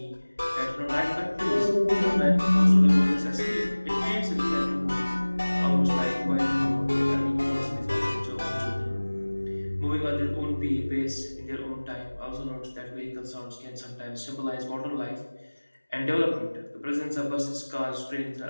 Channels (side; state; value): both; inverted; correlation -1.00